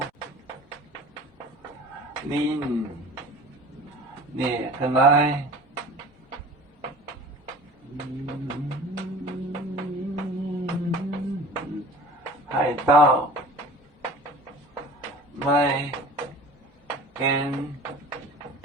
您列个来。海盗买跟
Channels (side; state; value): both; normal; correlation 0.41